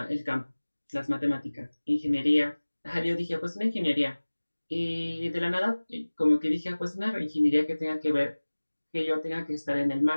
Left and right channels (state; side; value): inverted; both; correlation -1.00